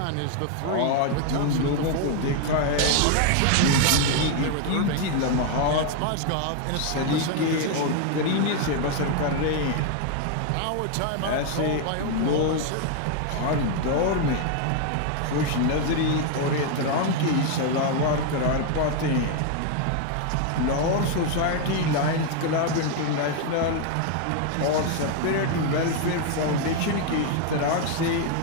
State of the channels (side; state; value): both; different; correlation 0.00